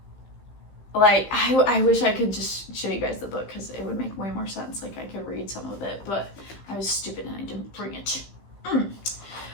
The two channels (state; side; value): late; right; 15 ms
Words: like I wish I could just show you guys the book because it would make way more sense. Like I could read some of it, but I was stupid and I didn't bring it.